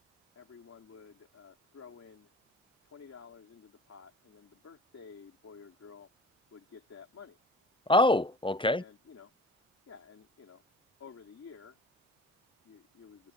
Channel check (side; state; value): both; normal; correlation 0.42